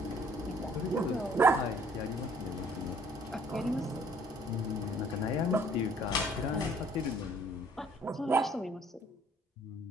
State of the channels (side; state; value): both; normal; correlation 0.59